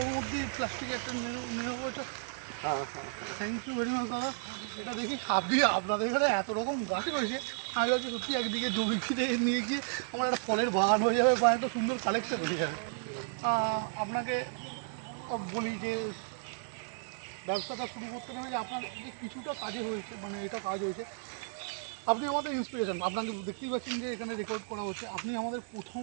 মধ্যে প্লাস্টিক একটা নেবো ওটা। হ্যাঁ হ্যাঁ, থ্যাংক ইউ ভেরি মাচ দাদা। এটা দেখি আপনাদের এখানে এত রকম গাছ রয়েছে, আমি ভাবছি সত্যি একদিকে জমি ফিরে নিয়ে গিয়ে আমার একটা ফলের বাগান হয়ে যাবে বা একটা সুন্দর কালেকশন হয়ে যাবে। আপনাকে বলি যে ব্যবসাটা শুরু করতে গেলে যে আপনার যে কিছুটা কাজে হয়েছে, মানে এটা কাজ হয়েছে, আপনি আমাদের ইন্সপিরেশন। আপনাকে দেখতেই পাচ্ছেন যে এখানে রেকর্ড করা হচ্ছে, আপনি আমাদের প্রথম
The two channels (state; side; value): silent; left; 56 dB below the other